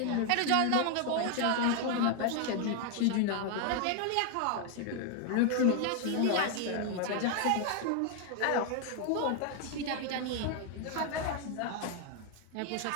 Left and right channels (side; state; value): both; different; correlation 0.00